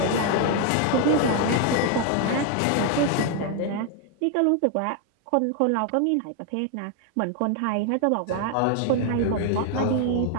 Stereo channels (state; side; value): different; both; correlation 0.01